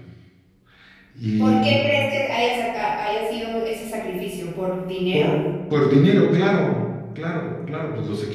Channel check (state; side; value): identical; both; correlation 1.00